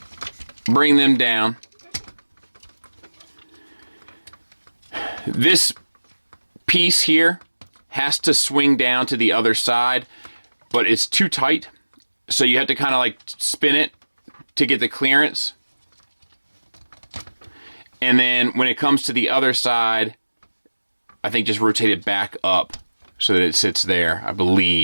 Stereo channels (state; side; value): inverted; both; correlation -1.00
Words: bring them down. This piece here has to swing down to the other side, but it's too tight. So you have to kind of like spin it to get the clearance. And then when it comes to the other side, I think just rotate it back up so that it sits there, I